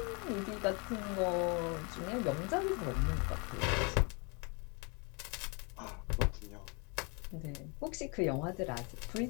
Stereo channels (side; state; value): right; quieter; 32.5 dB